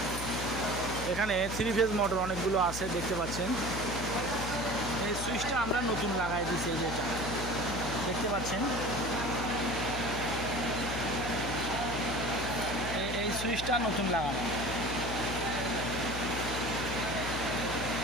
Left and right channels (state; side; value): noise; left; hum, 7 dB below the sound